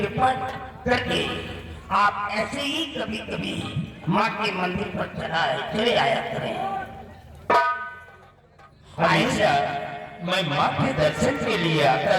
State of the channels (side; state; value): both; identical; correlation 1.00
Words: करके आप ऐसे ही कभी कभी माँ के मंदिर पर चले आया करें। हमेशा मैं माँ के दर्शन के लिए आता